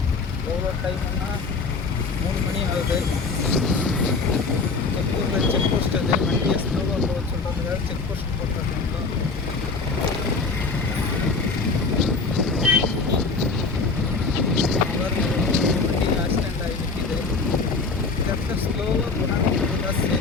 எவ்வளோ டைமுன்னா 3 மணி ஆகுது. செக்கூரில் செக் போஸ்ட் அது வண்டியை ஸ்லோவாக போக சொல்கிறதுக்காக செக் போஸ்ட் போட்டுருக்காங்க. வண்டி ஆக்சிடெண்ட் ஆகி நிற்கிது. இந்த இடத்துல ஸ்லோவாக போனால் தான்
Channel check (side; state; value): right; quieter; 4.2 dB